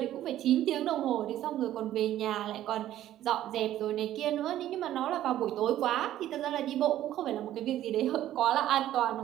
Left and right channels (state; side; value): quieter; left; 12.8 dB